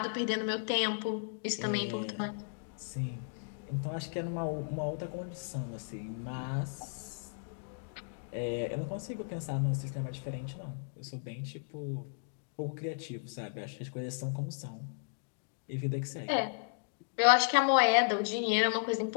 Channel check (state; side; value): silent; right; digital silence